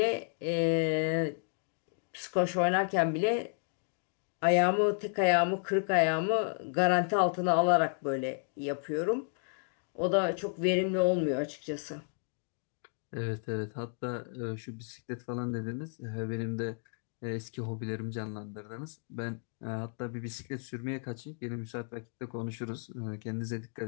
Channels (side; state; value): right; silent; 56 dB below the other